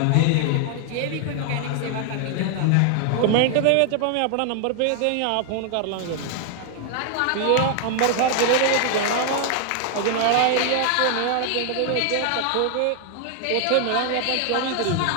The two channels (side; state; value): both; different; correlation 0.00